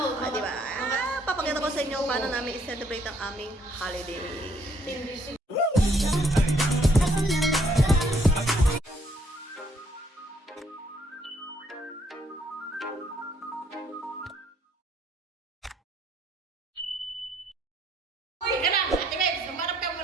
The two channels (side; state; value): both; normal; correlation 0.67